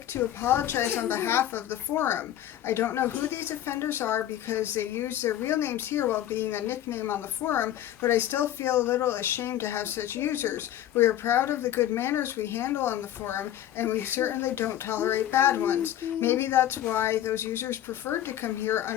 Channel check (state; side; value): quieter; right; 12.1 dB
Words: to apologize on behalf of the forum. I don't know who these offenders are because they use their real names here while being a nickname on the forum, but I still feel a little ashamed to have such users. We are proud of the good manners we handle on the forum, and we certainly don't tolerate bad ones. Maybe that's why those users preferred to come here